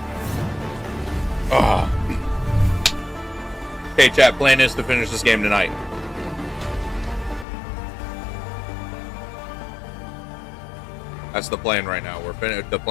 Ah. Okay, chat. Plan is to finish this game tonight. That's the plan right now. The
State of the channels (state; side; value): drops out; right; at 7.5 s